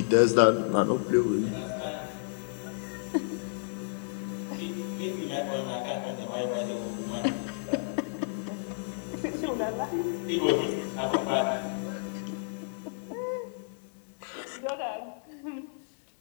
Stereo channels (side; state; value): right; silent; digital silence